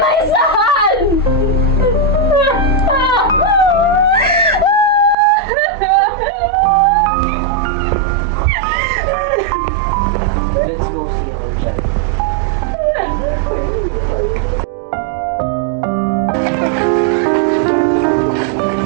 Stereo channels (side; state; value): left; drops out; at 5.2 s